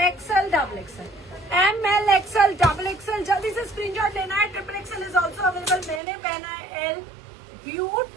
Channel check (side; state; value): left; drops out; at 6.0 s